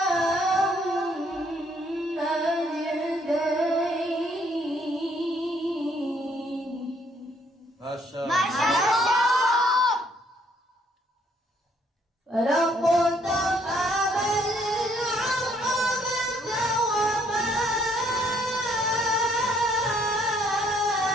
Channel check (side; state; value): both; normal; correlation 0.67